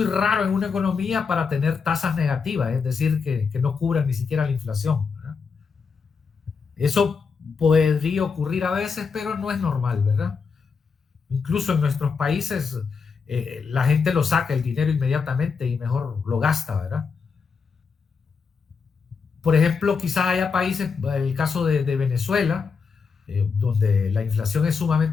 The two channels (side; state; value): right; quieter; 5.4 dB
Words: raro en una economía para tener tasas negativas, es decir, que no cubran ni siquiera la inflación, ¿verdad? Eso podría ocurrir a veces, pero no es normal, ¿verdad? Incluso en nuestros países la gente lo saca el dinero inmediatamente y mejor lo gasta, ¿verdad? Por ejemplo, quizás haya países, el caso de Venezuela, donde la inflación es